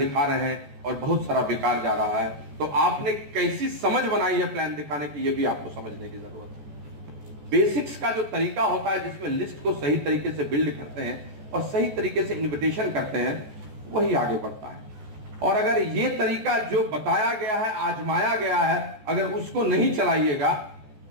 रहे हैं और बहुत सारा बेकार जा रहा है, तो आपने कैसी समझ बनाई है प्लान दिखाने की, यह भी आपको समझने की जरूरत है। बेसिक्स का जो तरीका होता है जिसमें लिस्ट को सही तरीके से बिल्ड करते हैं और सही तरीके से इन्विटेशन करते हैं, वही आगे बढ़ता है। और अगर ये तरीका जो बताया गया है, आजमाया गया है, अगर उसको नहीं चलाइएगा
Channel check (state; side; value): late; left; 14 ms